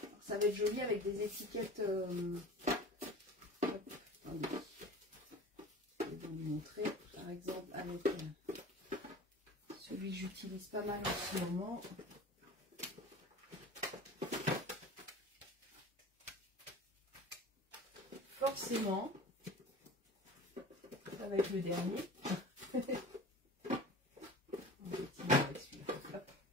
Ça va être joli avec des étiquettes. Attendez. Je vais vous montrer. Par exemple, avec celui que j'utilise pas mal en ce moment. Forcément, ça va être le dernier.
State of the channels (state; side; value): normal; both; correlation 0.37